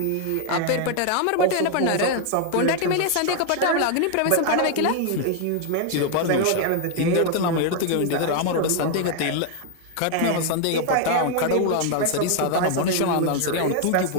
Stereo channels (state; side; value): different; both; correlation 0.00